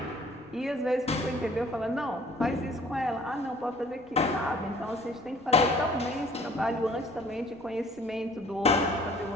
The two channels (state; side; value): noise; left; rumble, 29 dB below the sound